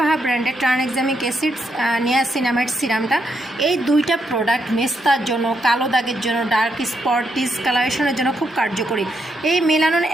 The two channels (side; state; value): both; normal; correlation 0.79